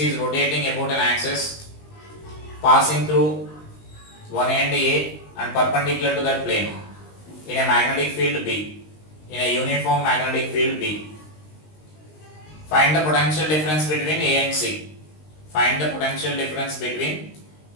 is rotating about an axis, passing through one end A and perpendicular to that plane in a magnetic field B, in a uniform magnetic field B. Find the potential difference between A and C. Find the potential difference between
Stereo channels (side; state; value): right; late; 20 ms